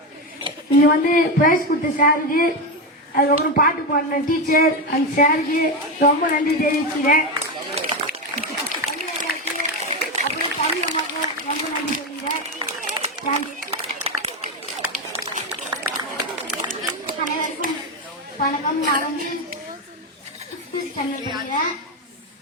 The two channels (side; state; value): both; normal; correlation 0.12